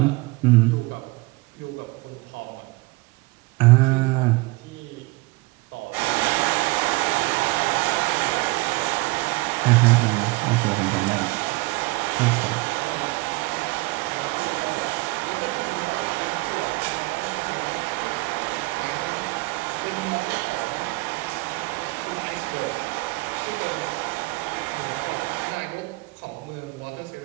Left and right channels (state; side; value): quieter; left; 23.0 dB